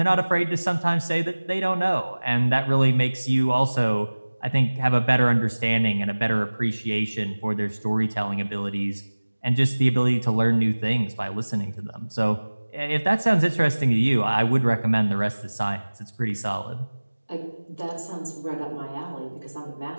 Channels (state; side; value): inverted; both; correlation -1.00